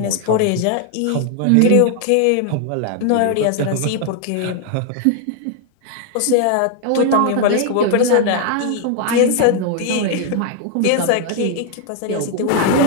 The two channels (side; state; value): both; different; correlation 0.00